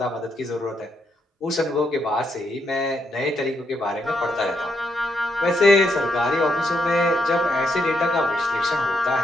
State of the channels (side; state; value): both; normal; correlation 0.78